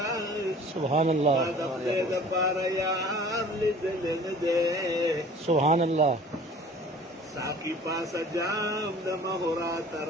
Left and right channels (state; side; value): normal; both; correlation 0.47